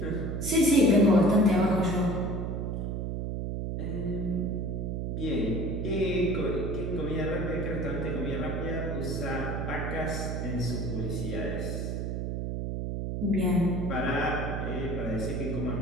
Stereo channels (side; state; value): right; noise; hum, 2 dB below the sound